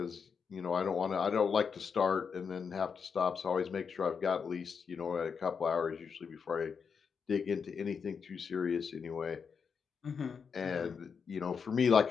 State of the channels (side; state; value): right; quieter; 6.1 dB